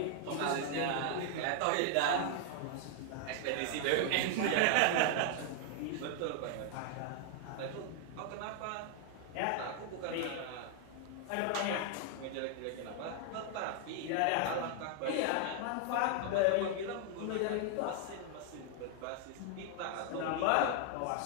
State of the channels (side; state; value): both; different; correlation 0.00